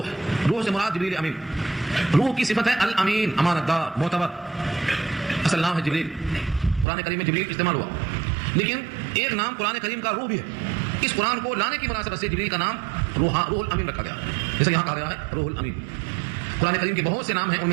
روح سے مراد جبریل امین. روح کی صفت ہے الامین، امانت دار، معتبر. اصل نام ہے جبریل. قرآن کریم میں جبریل استعمال ہوا، لیکن ایک نام قرآن کریم کا روح بھی ہے. اس قرآن کو لانے کی مناسبت سے جبریل کا نام روح الامین رکھا گیا، جیسے یہاں کہا گیا ہے روح الامین. قرآن کریم کے بہت سے نام ہیں، ان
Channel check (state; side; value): drops out; left; at 6.9 s